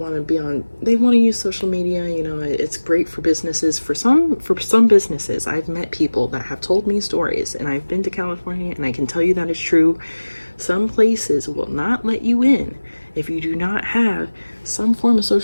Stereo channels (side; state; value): both; inverted; correlation -1.00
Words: to use social media, you know. It's great for businesses. For some businesses, I've met people that have told me stories, and I've been to California and I can tell you that it's true. Some places will not let you in if you do not have some form of